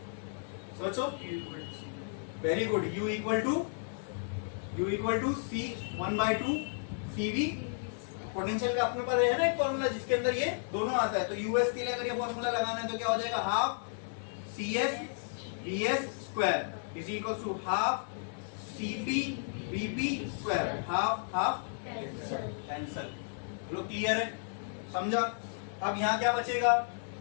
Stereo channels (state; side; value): silent; right; digital silence